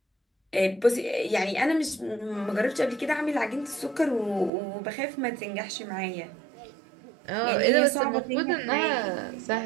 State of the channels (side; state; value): left; drops out; at 4.5 s